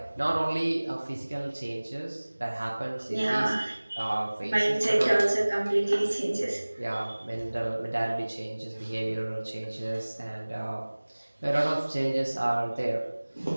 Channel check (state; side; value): inverted; both; correlation -1.00